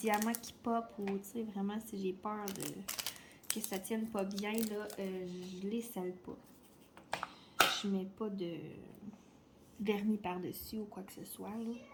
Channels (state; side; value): identical; both; correlation 1.00